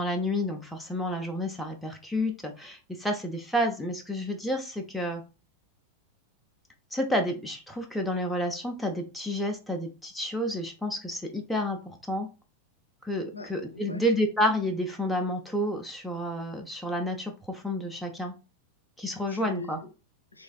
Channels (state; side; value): normal; both; correlation 0.43